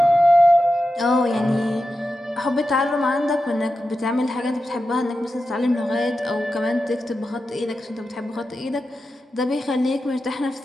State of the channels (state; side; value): normal; both; correlation 0.91